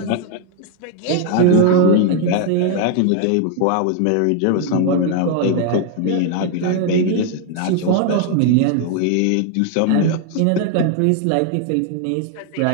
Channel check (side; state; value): both; different; correlation 0.00